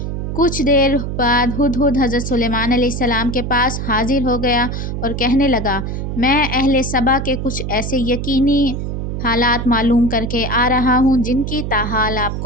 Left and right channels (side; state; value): right; noise; hum, 4 dB below the sound